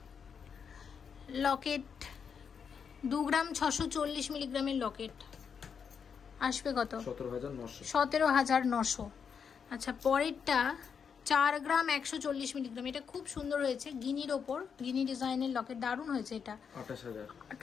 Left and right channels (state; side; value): quieter; right; 6.7 dB